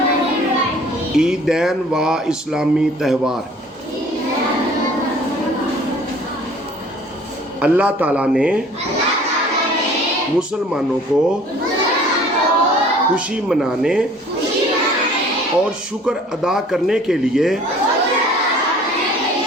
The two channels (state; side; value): normal; both; correlation 0.51